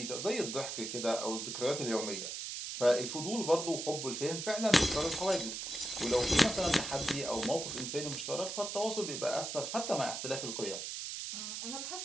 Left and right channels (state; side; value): noise; right; hiss, 5 dB below the sound